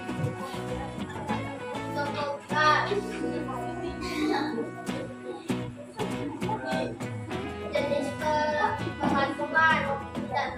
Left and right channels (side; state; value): both; identical; correlation 1.00